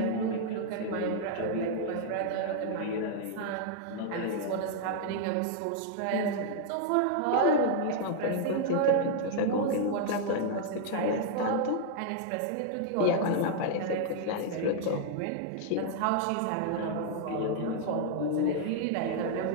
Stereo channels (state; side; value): different; both; correlation 0.00